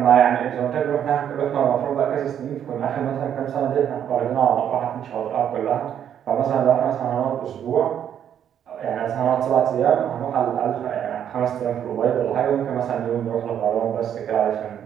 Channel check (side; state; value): left; quieter; 9.4 dB